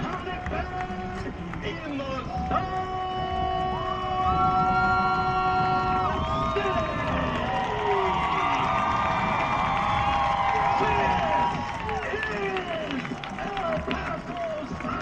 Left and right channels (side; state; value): both; identical; correlation 1.00